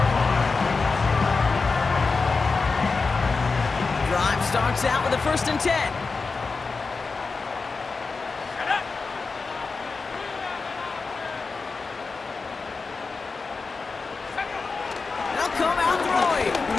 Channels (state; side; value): quieter; right; 4.3 dB